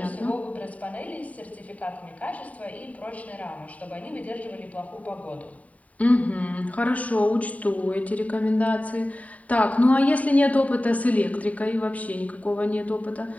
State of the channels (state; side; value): late; right; 0.069 ms